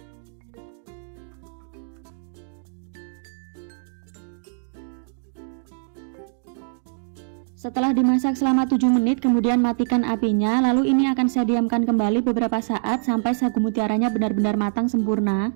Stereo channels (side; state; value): left; silent; digital silence